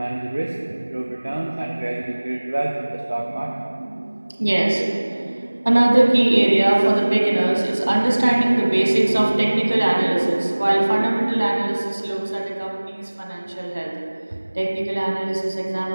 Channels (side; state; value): both; inverted; correlation -1.00